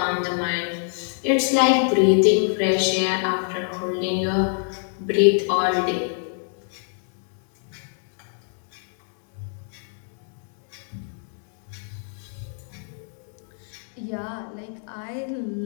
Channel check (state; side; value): silent; right; 61 dB below the other